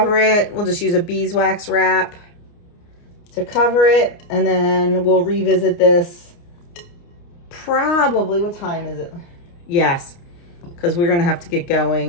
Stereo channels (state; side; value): late; right; 29 ms